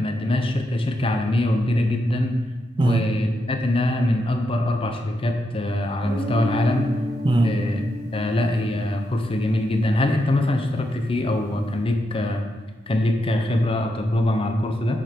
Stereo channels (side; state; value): both; normal; correlation 0.83